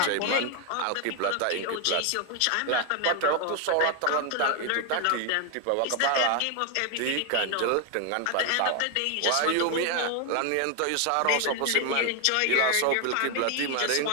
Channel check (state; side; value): different; both; correlation 0.01